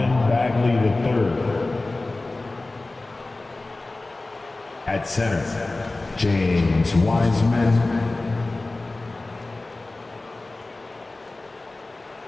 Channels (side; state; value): right; quieter; 3.1 dB